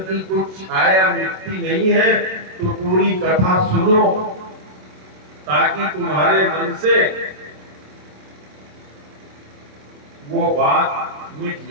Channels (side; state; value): left; late; 27 ms